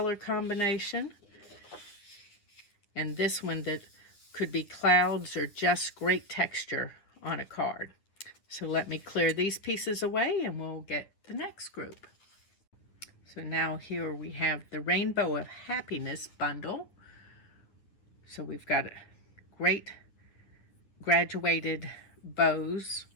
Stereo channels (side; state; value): right; late; 9.8 ms